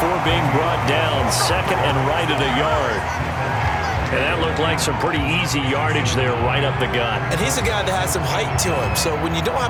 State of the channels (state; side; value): identical; both; correlation 1.00